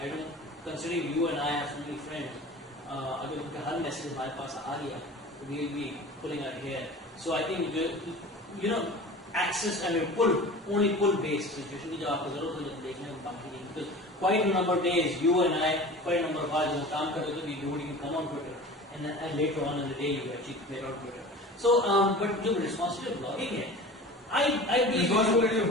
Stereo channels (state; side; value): normal; both; correlation 0.38